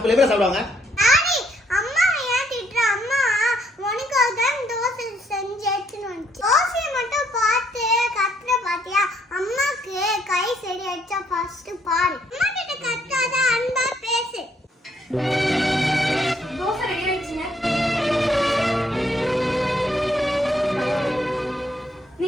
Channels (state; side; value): normal; both; correlation 0.70